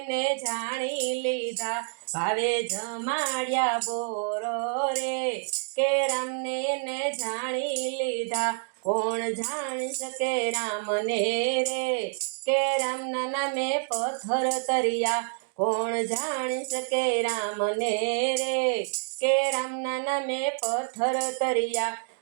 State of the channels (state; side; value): silent; left; 59 dB below the other